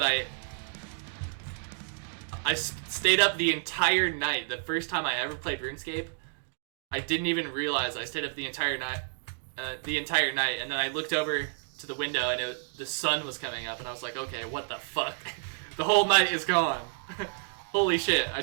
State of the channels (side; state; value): left; silent; digital silence